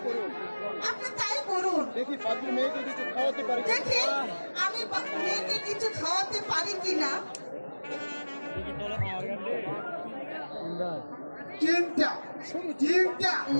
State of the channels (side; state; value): both; inverted; correlation -1.00